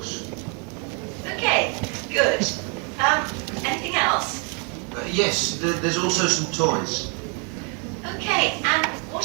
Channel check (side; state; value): left; quieter; 36.3 dB